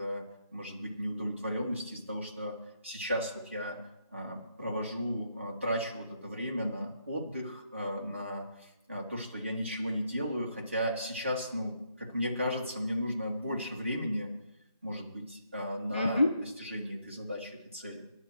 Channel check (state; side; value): inverted; both; correlation -0.75